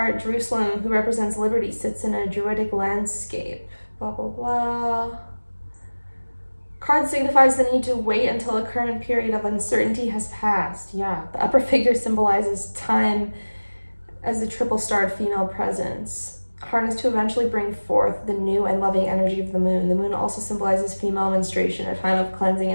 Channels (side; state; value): both; inverted; correlation -1.00